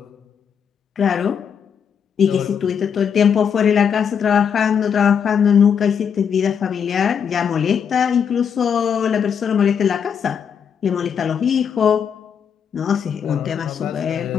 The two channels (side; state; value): right; quieter; 7.4 dB